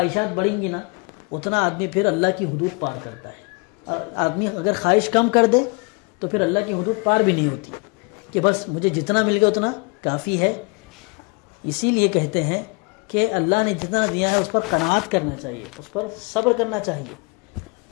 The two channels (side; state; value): right; quieter; 31.4 dB